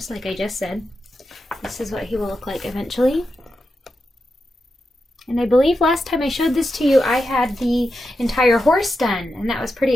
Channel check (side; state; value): both; normal; correlation 0.88